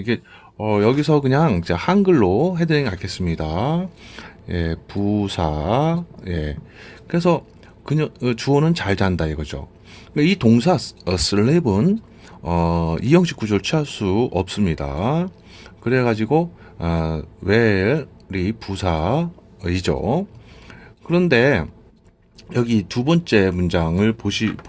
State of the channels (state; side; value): identical; both; correlation 1.00